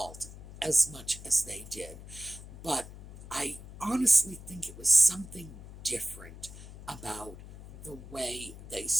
as much as they did. But I honestly think it was something different about the way they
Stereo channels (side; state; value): left; noise; hum, 15 dB below the sound